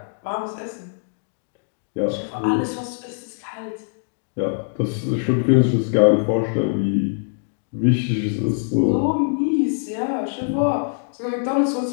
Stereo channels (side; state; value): right; silent; digital silence